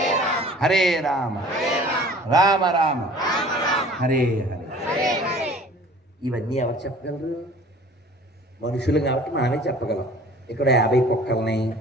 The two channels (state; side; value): normal; both; correlation 0.48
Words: హరే రామ రామ రామ హరే హరే. ఇవన్నీ ఎవరు చెప్పగలరు? మనుషులు కాబట్టి మనమే చెప్పగలం. ఇక్కడ 50 కుక్కల్ని,